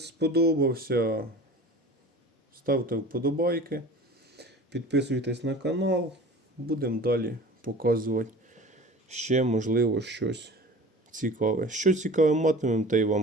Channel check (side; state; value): both; normal; correlation 0.40